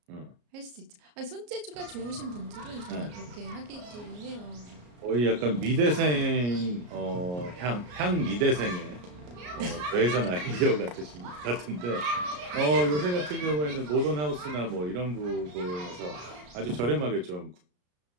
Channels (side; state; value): left; late; 33 ms